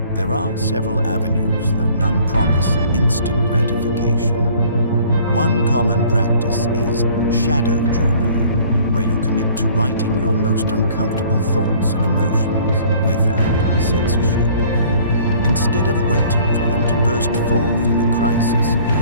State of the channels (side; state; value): both; inverted; correlation -0.54